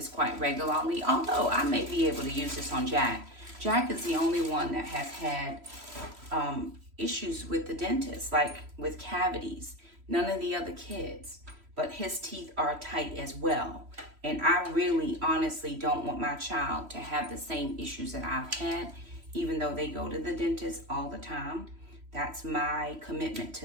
quite regularly, although I may be able to use this on Jack. Jack is the only one that has had issues with the dentist, like with cavities. None of the other kids, but his teeth are tight as well. And I really honestly don't want my child to have the same issues that I've had, even though they go to the dentist all the time. That's my commitment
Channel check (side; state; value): left; late; 3.0 ms